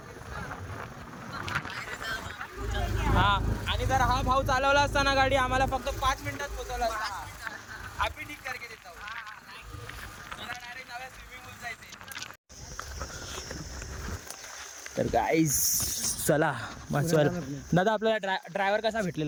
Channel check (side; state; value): both; identical; correlation 1.00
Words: हा आणि जर हा भाऊ चालवला असता ना गाडी आम्हाला फक्त 5 मिनिटात पोहोचवला असता. आम्ही ठीक करके देतो. मला डायरेक्ट नव्या स्विमिंग पूल जायचे. तर गाईस चला मस्वर दादा आपल्याला ड्रायव्हर कसा